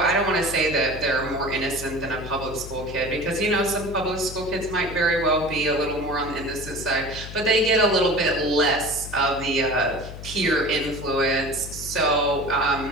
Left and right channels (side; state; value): left; noise; hum, 11 dB below the sound